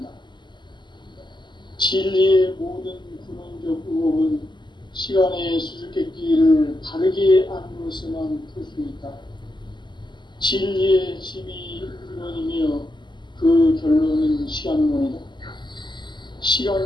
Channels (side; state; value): right; late; 0.22 ms